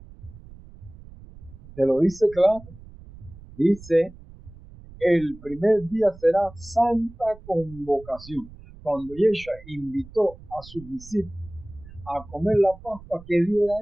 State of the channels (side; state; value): right; noise; rumble, 19 dB below the sound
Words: Te lo dice claro. Dice, el primer día será santa convocación. Cuando Yeshua invitó a sus discípulos a comer la Pascua, ¿qué día era